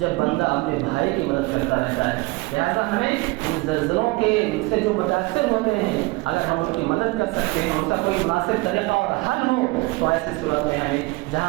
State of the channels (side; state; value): left; quieter; 23.4 dB